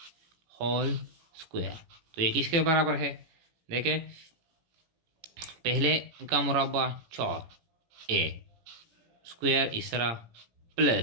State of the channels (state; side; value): late; left; 17 ms